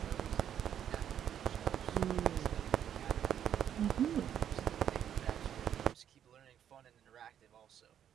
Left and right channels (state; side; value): quieter; left; 9.6 dB